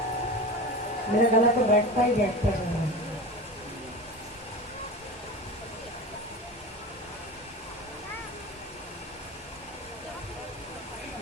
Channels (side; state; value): both; normal; correlation 0.30